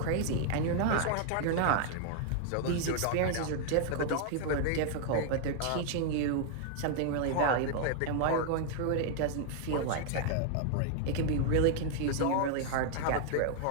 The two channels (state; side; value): different; both; correlation 0.00